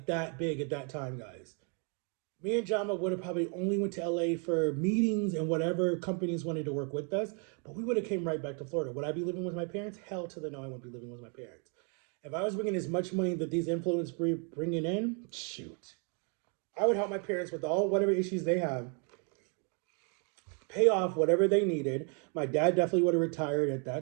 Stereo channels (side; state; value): left; quieter; 38.5 dB